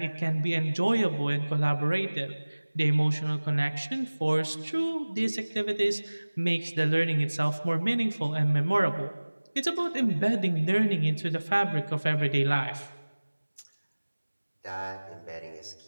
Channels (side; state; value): both; inverted; correlation -1.00